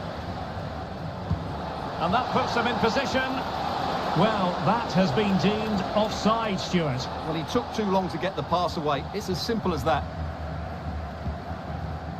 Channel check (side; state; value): both; identical; correlation 1.00